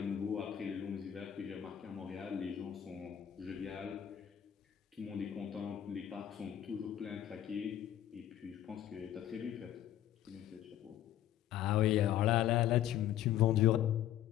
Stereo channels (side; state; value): right; quieter; 11.4 dB